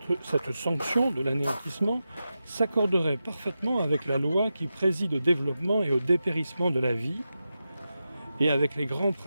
sanction de l'anéantissement s'accorderait parfaitement avec la loi qui préside au développement et au dépérissement de la vie, et avec les grands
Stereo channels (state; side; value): inverted; both; correlation -0.91